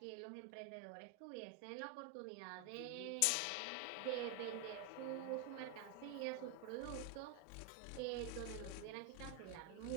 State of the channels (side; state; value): both; different; correlation 0.01